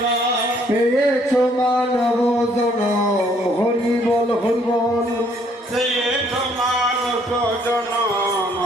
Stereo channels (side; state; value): both; normal; correlation 0.65